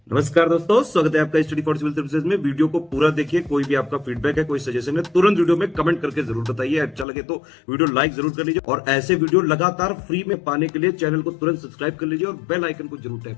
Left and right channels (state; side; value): drops out; right; at 7.1 s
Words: नमस्कार दोस्तों, स्वागत है आपका स्टडी फॉर सिविल सर्विसेज में। वीडियो को पूरा देखिए। कोई भी आपका फीडबैक है, कोई सजेशन है, तुरंत वीडियो में कमेंट करके जरूर बताइए। अच्छा लगे तो वीडियो लाइक जरूर कर लीजिए और ऐसे वीडियो लगातार फ्री में पाने के लिए चैनल को तुरंत सब्सक्राइब कर लीजिए और बेल आइकन को जरूर